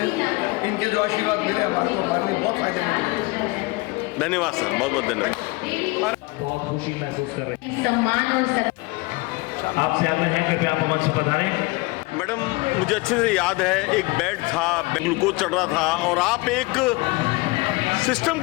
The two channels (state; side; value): quieter; right; 23.7 dB